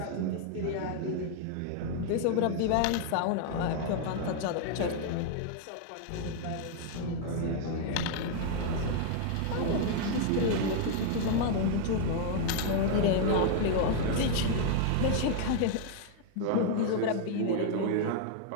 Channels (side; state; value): both; different; correlation 0.00